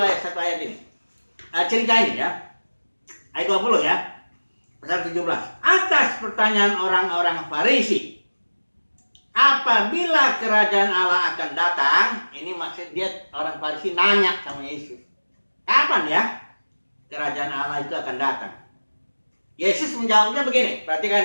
satu ayat ini. Cerita ini, ya. Ayat 20, ya. Pasal 17. Atas pertanyaan orang-orang Farisi, apabila kerajaan Allah akan datang, ini maksud dia orang Farisi nanya sama Yesus, kapan ya kerajaan Allah itu akan datang? Yesus menjawabnya begini,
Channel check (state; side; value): inverted; both; correlation -1.00